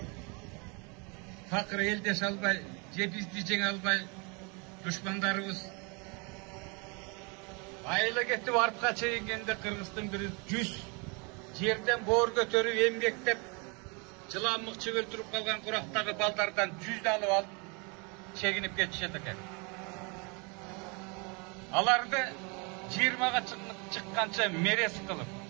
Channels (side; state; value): left; quieter; 31.6 dB